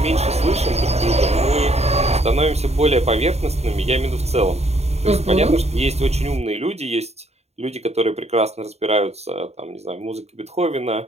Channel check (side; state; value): left; late; 0.31 ms